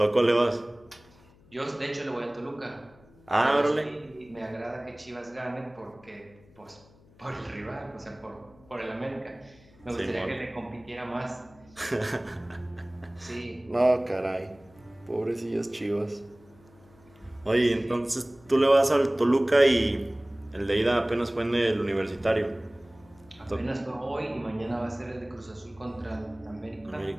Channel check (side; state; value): left; noise; hum, 27 dB below the sound